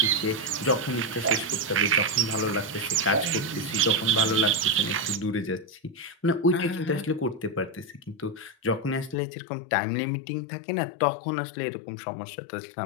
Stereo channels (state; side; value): drops out; right; at 9.2 s